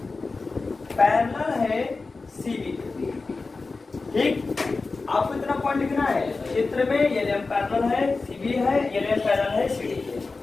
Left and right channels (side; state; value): right; quieter; 3.9 dB